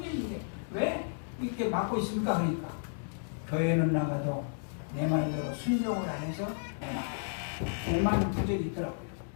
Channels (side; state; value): right; silent; digital silence